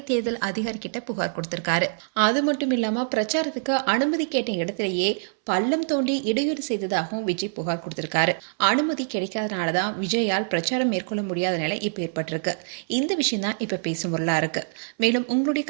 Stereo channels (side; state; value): left; silent; 62 dB below the other